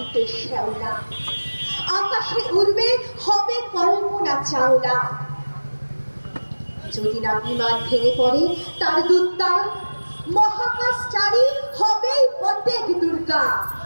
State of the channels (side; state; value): both; inverted; correlation -1.00